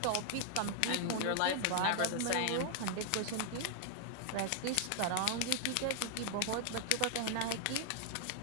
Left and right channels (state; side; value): different; both; correlation 0.00